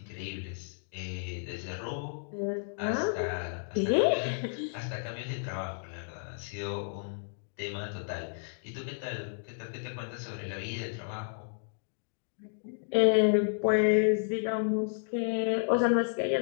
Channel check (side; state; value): right; silent; digital silence